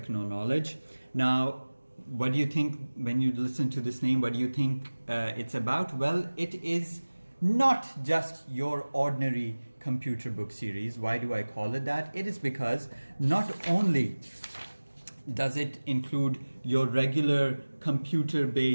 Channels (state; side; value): inverted; both; correlation -1.00